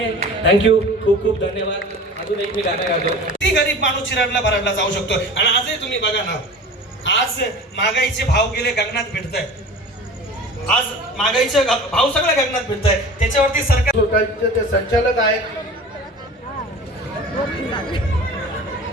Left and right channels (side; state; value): both; normal; correlation 0.38